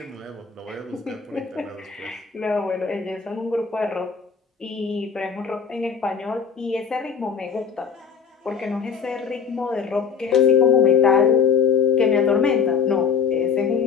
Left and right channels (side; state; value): right; quieter; 6.5 dB